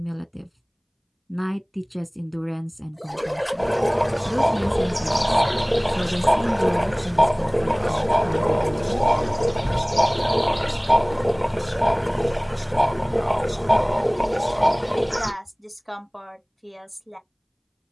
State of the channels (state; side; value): identical; both; correlation 1.00